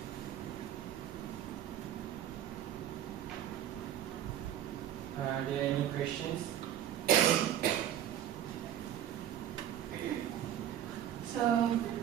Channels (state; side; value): quieter; left; 11.0 dB